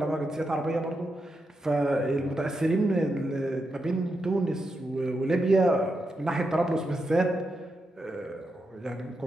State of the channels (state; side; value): normal; both; correlation 0.85